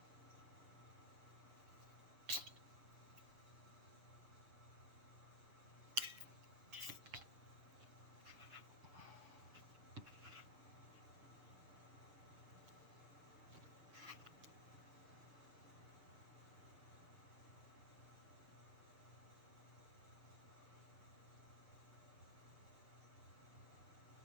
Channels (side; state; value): left; late; 7.0 ms